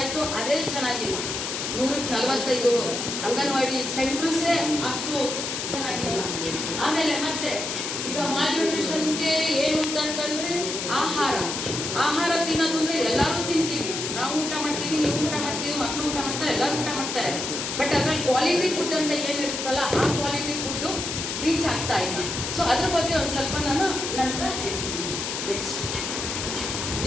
ಅದೇ ಚೆನ್ನಾಗಿಲ್ಲ. 145 ಅಂಗನವಾಡಿ ಸೆಂಟರ್ಸೇ ಅಷ್ಟು ಚೆನ್ನಾಗಿಲ್ಲ. ಆಮೇಲೆ ಮತ್ತೆ ಈಗ ಮಾಲ್ನ್ಯೂಟ್ರಿಷನ್ಗೆ ಏನು ಅಂತಂತಂದ್ರೆ ಆಹಾರ ತಿನ್ನೋದು ಅಂದ್ರೆ ಎಲ್ಲರೂ ತಿಂತೀವಿ. ನಾವು ಊಟ ಮಾಡ್ತೀವಿ, ನೀವು ಊಟ ಮಾಡ್ತೀವಿ, ಮಕ್ಕಳು ಊಟ ಮಾಡ್ತಾರೆ, ಎಲ್ಲರೂ ಊಟ ಮಾಡ್ತಾರೆ. ಬಟ್ ಅದ್ರಲ್ಲಿ ಕ್ವಾಲಿಟಿ ಫುಡ್ ಅಂತ ಏನಿರುತ್ತಲ್ಲ, ಆ ಕ್ವಾಲಿಟಿ ಫುಡ್ಡು ರೀಚ್ ಆಗ್ತಾ ಇಲ್ಲ. ಸೊ ಅದ್ರ ಬಗ್ಗೆ ಒಂದು ಸ್ವಲ್ಪ ನಾನು ನಂತರ ಹೇಳ್ತೀನಿ. ನೆಕ್ಸ್ಟ್,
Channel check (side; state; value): left; noise; hiss, 4 dB below the sound